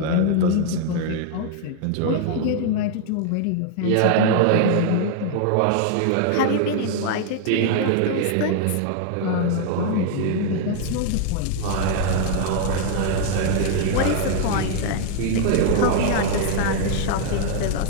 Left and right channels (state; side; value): different; both; correlation 0.00